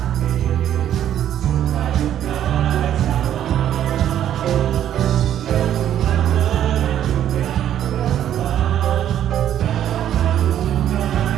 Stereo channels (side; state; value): left; quieter; 10.8 dB